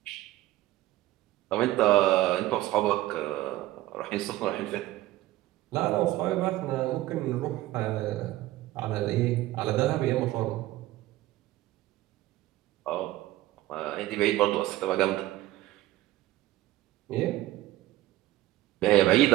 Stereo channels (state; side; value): quieter; left; 16.0 dB